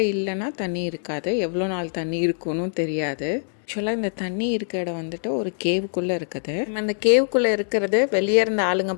இல்லைன்னா தண்ணி இருக்காது. எவ்வளோ நாள் தண்ணி இருக்குன்னு தெரியாது. ஆக்சுவலாக இந்த தண்ணி இருக்க இடம் வந்துட்டு ஒரு கேவுக்குள்ளே இருக்குது. நம்ம இந்த கேவுக்குள்ளே இருக்கிறது வெளியே இருந்த ஆளுங்க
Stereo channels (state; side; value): silent; right; digital silence